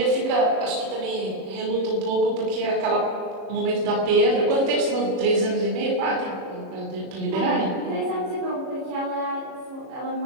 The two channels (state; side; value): late; left; 37 ms